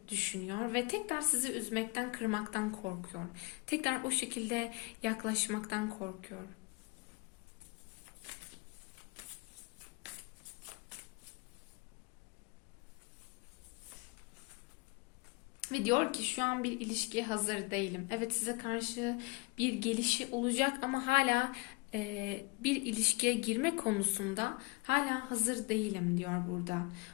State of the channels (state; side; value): quieter; right; 26.8 dB